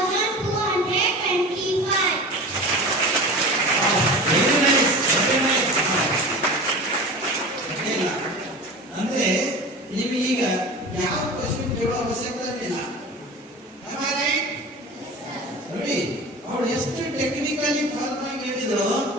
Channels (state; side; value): normal; both; correlation 0.34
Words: Very nice, very nice. ಇಲ್ಲ ಅಂದ್ರೆ ನೀವು ಈಗ ಯಾವ ಕ್ವಶನ್ ಕೇಳೋ ಅವಶ್ಯಕತೆ ಇಲ್ಲ. ನೋಡಿ, ಅವಳು ಎಷ್ಟು ಟೆಕ್ನಿಕಲಿ ಫಾರ್ಮ್ ಆಗಿ ಹೇಳಿದ್ರು,